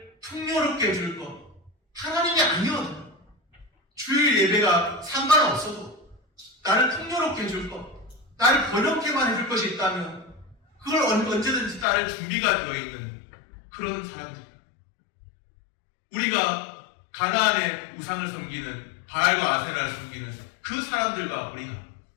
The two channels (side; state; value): right; drops out; at 11.9 s